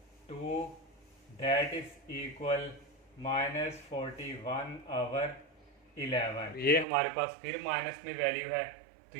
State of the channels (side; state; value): left; drops out; at 6.9 s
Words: डेट इज इक्वल -41/11। ये हमारे पास फिर माइनस में वैल्यू है तो